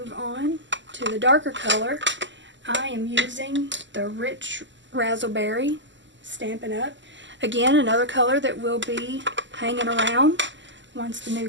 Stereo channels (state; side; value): late; left; 0.54 ms